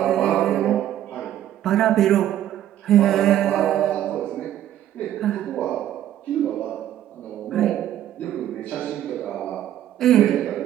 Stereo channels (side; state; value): left; quieter; 11.9 dB